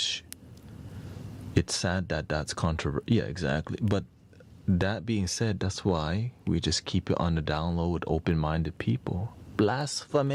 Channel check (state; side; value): identical; both; correlation 1.00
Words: It's sad that that's controversial. Yeah, exactly. But that being said, that's why we just keep it on the down low with open-minded people.